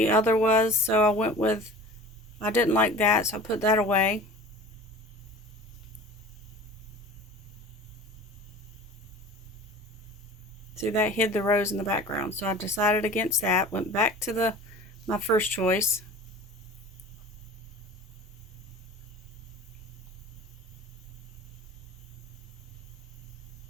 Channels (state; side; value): normal; both; correlation 0.40